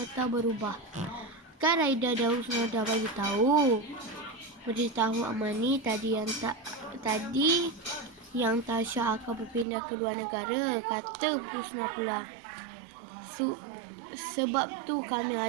berubah. Kan Raida dah Husna dah beritahu Amani tadi yang Tasha akan berpindah ke luar negara, kata Husna pula. Sebab tu kami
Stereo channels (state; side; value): drops out; left; at 9.7 s